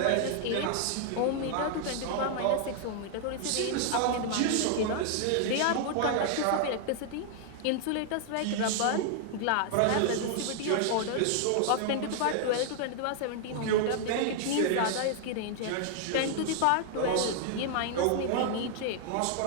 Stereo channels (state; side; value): different; both; correlation 0.00